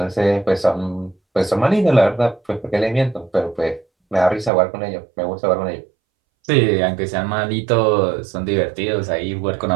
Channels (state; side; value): drops out; left; at 4.5 s